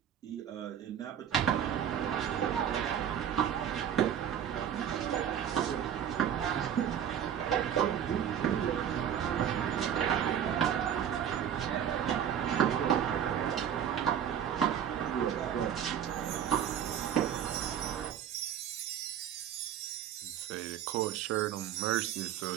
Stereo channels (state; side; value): quieter; left; 9.3 dB